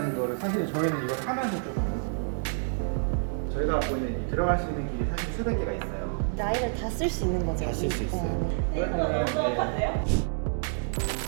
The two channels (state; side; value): silent; left; digital silence